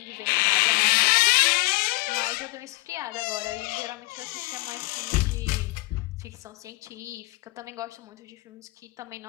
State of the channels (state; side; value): quieter; right; 23.6 dB